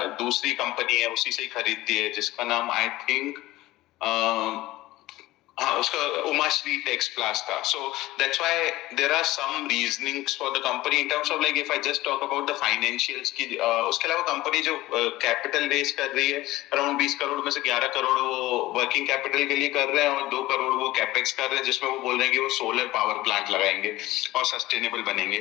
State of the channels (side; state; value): right; quieter; 17.5 dB